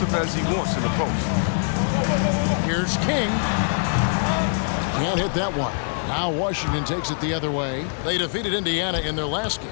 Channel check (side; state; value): right; silent; 63 dB below the other